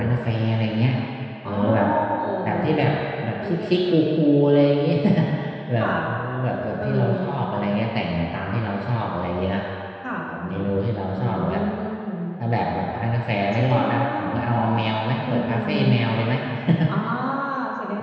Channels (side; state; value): both; identical; correlation 1.00